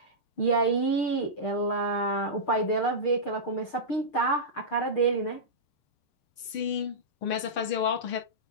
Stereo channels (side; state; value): right; late; 6.6 ms